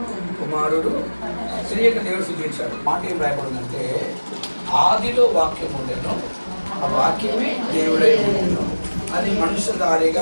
కుమారుడు, శ్రీయక దేవుడు సృజించాడు. మాట ఏం రాయబడిందంటే, ఆదిలో వాక్యం ఉండేను, ఆ వాక్యమే దేవుడై ఉండేను, అది మనుష్యధారిగా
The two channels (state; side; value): inverted; both; correlation -1.00